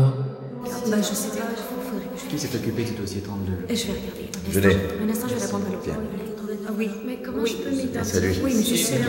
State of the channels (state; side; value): identical; both; correlation 1.00